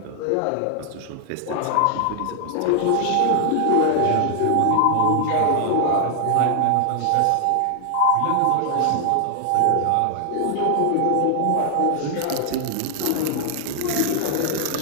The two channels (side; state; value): both; different; correlation 0.00